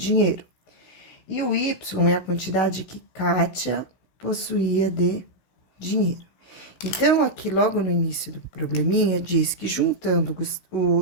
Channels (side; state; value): right; late; 16 ms